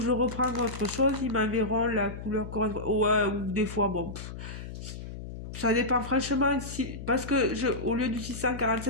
reprends autre chose, ils m'enverront la couleur correspondante. Ouais, ou des fois, bon, ça dépend franchement, parce que au lieu du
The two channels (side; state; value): left; noise; hum, 10 dB below the sound